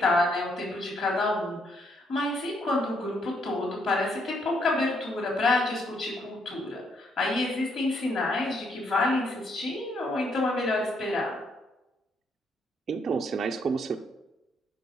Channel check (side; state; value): both; normal; correlation 0.72